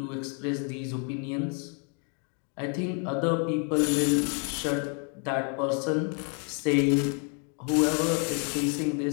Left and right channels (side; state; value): right; quieter; 39.5 dB